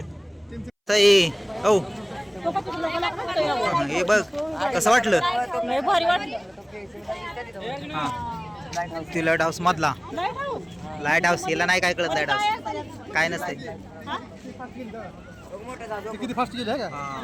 ताई औ हे बघ कसं वाटलं. लय भारी वाटलं. ती लाईट हाऊस मधला लाईट हाऊस हिला नाही काय कळत. लाईट हाऊस काय नसते. किती फास्ट गेले का?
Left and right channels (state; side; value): identical; both; correlation 1.00